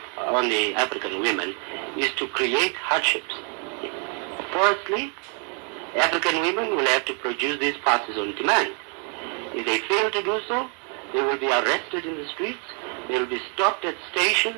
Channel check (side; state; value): left; quieter; 38.8 dB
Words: the African women is to create hardships. Firstly, African women will have to produce these passes on demand. If they fail to do so, they will be arrested in the streets, they will be stopped at